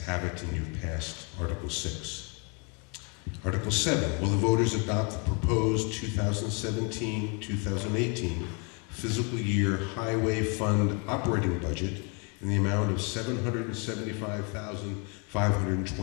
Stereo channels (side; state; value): right; quieter; 34.8 dB